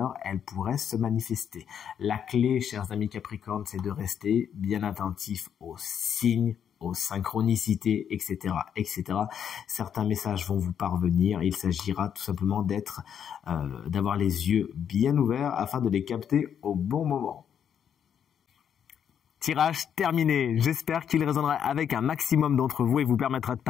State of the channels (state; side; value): quieter; right; 8.5 dB